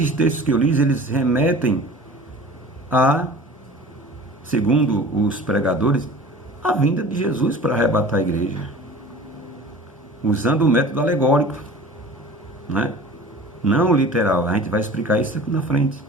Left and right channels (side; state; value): both; normal; correlation 0.41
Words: textos que eu li, eles remetem a, segundo os pregadores, a vinda de Jesus para arrebatar a igreja, usando o método alegórico, né? Não literal. A gente vai explicar isso aqui na frente.